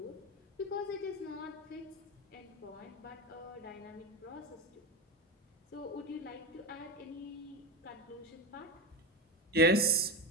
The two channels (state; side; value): normal; both; correlation 0.17